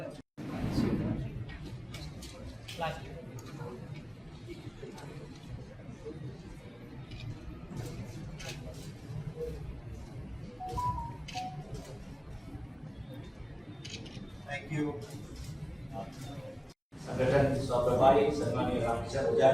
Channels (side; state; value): both; identical; correlation 1.00